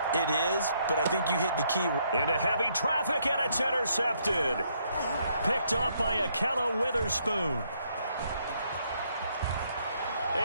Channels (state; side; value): inverted; both; correlation -0.72